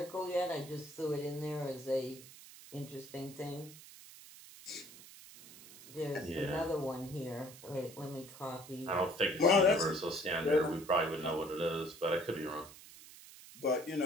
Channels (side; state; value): right; noise; hiss, 18 dB below the sound